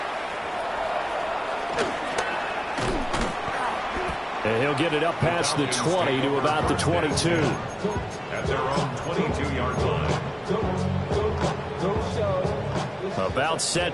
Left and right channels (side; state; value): both; identical; correlation 1.00